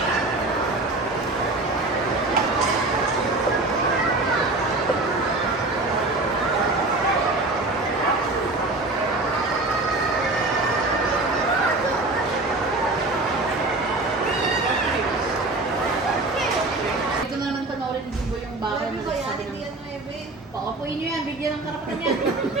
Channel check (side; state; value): left; quieter; 3.0 dB